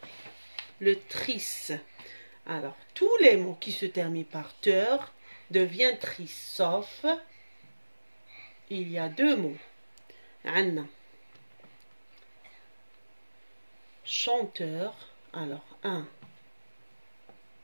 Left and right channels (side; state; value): both; inverted; correlation -1.00